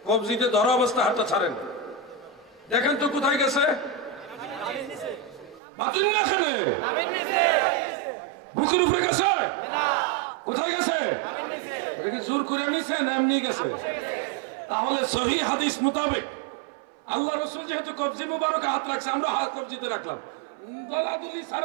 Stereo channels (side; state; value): left; drops out; at 5.6 s